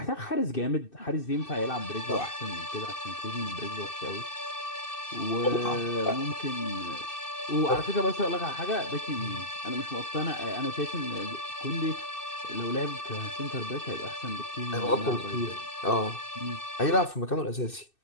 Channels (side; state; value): right; late; 2.6 ms